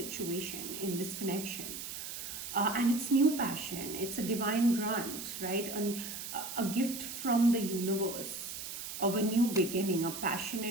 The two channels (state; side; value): noise; right; hiss, 7 dB below the sound